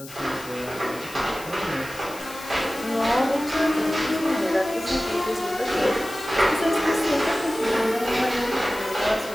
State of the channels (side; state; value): left; noise; hiss, 16 dB below the sound